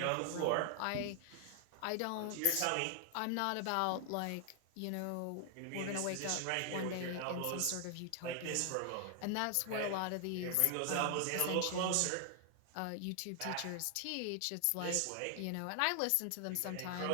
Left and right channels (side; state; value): both; different; correlation 0.00